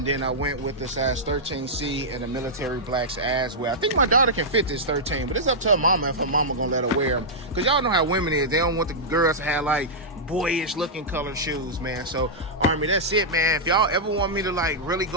then I went with the size 13C and the military blacks as well. I think my daughter can fit this 13, but it's up to her mama if her mama gonna let her wear them. Because y'all know how women is. They don't want the girls to have like boyish looking color shoes, man. So Army, that's it, man. If y'all ever want me to like really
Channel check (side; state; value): both; normal; correlation -0.10